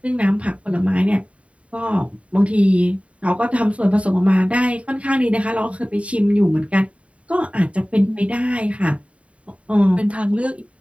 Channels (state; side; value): late; left; 0.064 ms